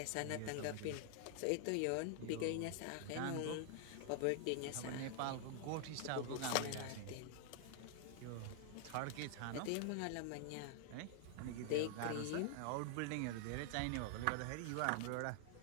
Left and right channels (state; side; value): different; both; correlation 0.00